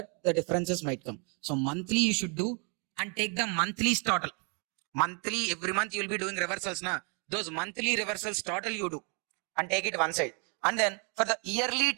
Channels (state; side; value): quieter; left; 36.9 dB